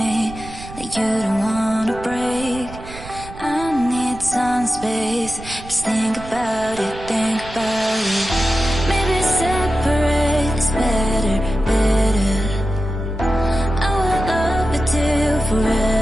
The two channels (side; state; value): right; noise; rumble, 14 dB below the sound